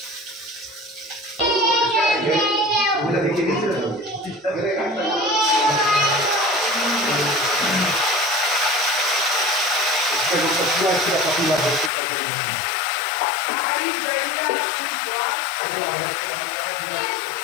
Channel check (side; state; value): right; drops out; at 11.9 s